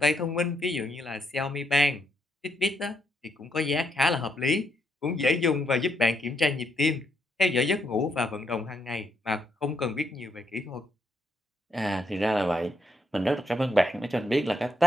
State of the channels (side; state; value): both; normal; correlation 0.77